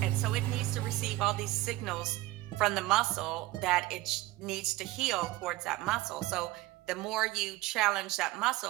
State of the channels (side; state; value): left; quieter; 17.9 dB